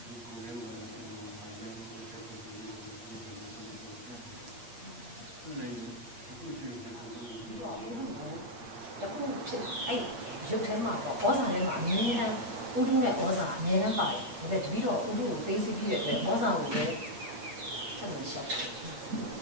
Dục thế mà có ra đây mà miếng này, u đu này có ra miếng này phải, vậy thì đó u đu tây xí kia để có ra rồi đấy, chắc là sợ.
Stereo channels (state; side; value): late; left; 8.5 ms